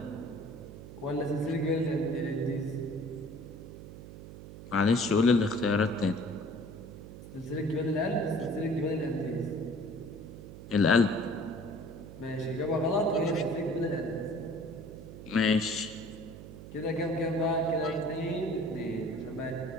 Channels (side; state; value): right; noise; hum, 13 dB below the sound